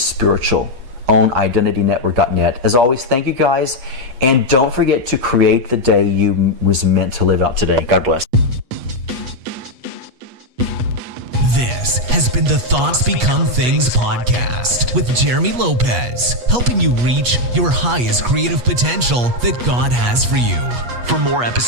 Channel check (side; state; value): left; late; 8.3 ms